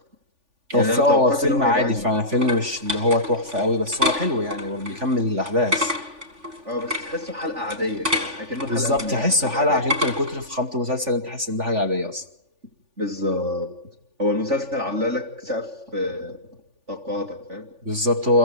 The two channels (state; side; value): late; left; 3.5 ms